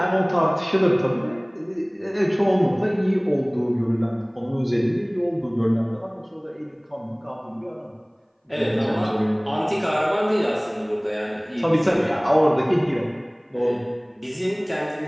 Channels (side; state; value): both; identical; correlation 1.00